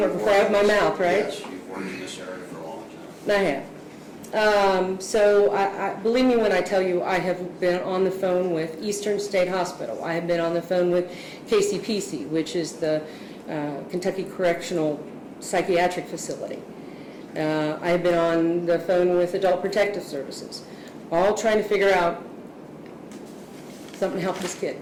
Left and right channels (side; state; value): both; identical; correlation 1.00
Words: before I have my mouth, right? Yes, you've worked in this area for a long time. I have. So believe me when I tell you, I have been on the phone with Eastern State Hospital. I have been on the phone with KCPC, which is the Kentucky Correctional Psychiatric Facility. I have been on the phone with Adult Protective Services, all trying to figure out something to help this kid